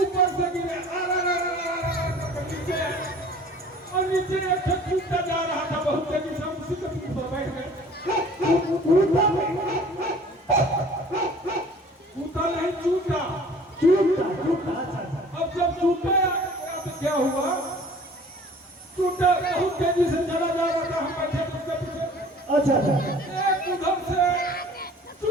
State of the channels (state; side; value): normal; both; correlation 0.48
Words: से गिरे नीचे, और नीचे एक कूदता जा रहा था बहुत तेजी से, उसी के पीठ पर बैठ गए। कूदा नहीं, चूटा। अब जब चूटा तो क्या हुआ? चूटा बहुत तेजी से चला जा रहा था, हम बैठे उसके पीछे। अच्छा अच्छा। एक उधर से